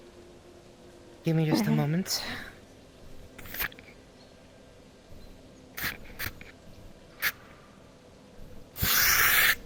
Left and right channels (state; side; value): identical; both; correlation 1.00